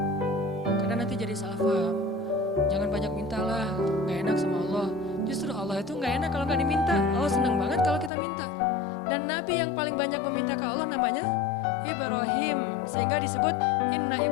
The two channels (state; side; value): drops out; right; at 8.1 s